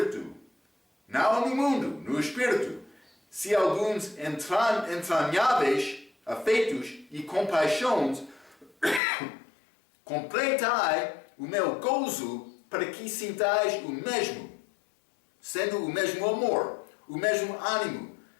não no mundo, no Espírito. se alguns entranháveis afetos e compaixões, completai o meu gozo para que sintais o mesmo, sendo o mesmo amor, o mesmo ânimo,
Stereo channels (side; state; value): right; drops out; at 9.0 s